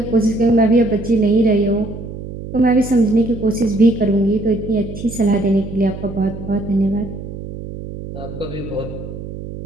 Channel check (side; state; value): right; noise; hum, 10 dB below the sound